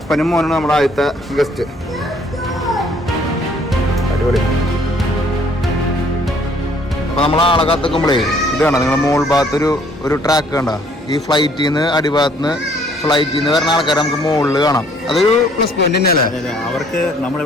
മോനാണ് നമ്മുടെ ആദ്യത്തെ ഗസ്റ്റ്. അടിപൊളി. അപ്പോൾ നമ്മൾ ആളെ കാത്തുക്കുമ്പോഴേ ഇത് വേണ്ട, നിങ്ങളുടെ മോൾ ഭാഗത്ത് ഒരു ട്രാക്ക് കണ്ട, ഈ ഫ്ലൈറ്റിൽ നിന്ന് അടിഭാഗത്ത് നിന്ന് ഫ്ലൈറ്റിൽ നിന്ന് വരുന്ന ആൾക്കാരെ നമുക്ക് മുകളിൽ കാണാം. അതൊരു പ്ലസ് പോയിന്റ് തന്നെയല്ലേ. അതെ, അവർക്ക്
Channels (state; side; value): normal; both; correlation 0.61